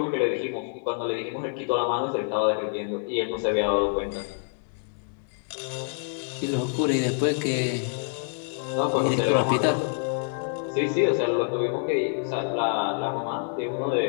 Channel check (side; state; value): right; silent; 60 dB below the other